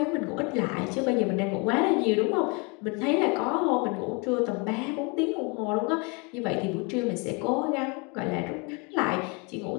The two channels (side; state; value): right; quieter; 31.1 dB